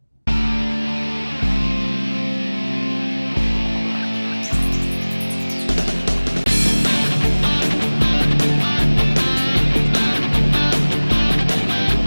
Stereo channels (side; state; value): both; inverted; correlation -1.00